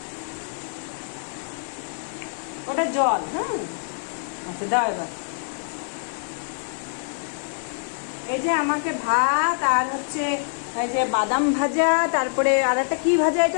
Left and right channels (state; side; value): silent; right; digital silence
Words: ওটা জল। হ্যাঁ, আচ্ছা দাও এবার। এই যে আমাকে ভাত আর হচ্ছে এই যে বাদাম ভাজা, তারপরে আর একটা কি ভাজা,